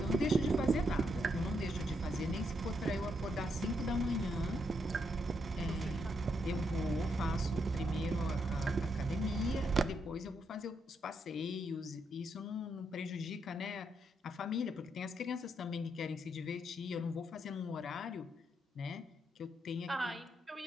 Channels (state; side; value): normal; both; correlation 0.78